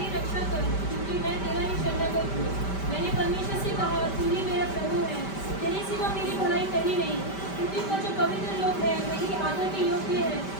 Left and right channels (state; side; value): late; right; 5.1 ms